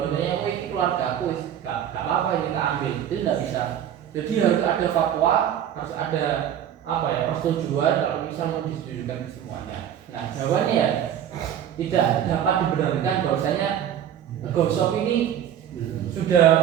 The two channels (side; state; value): left; quieter; 10.0 dB